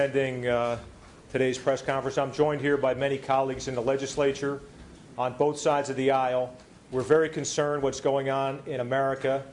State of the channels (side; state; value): both; identical; correlation 1.00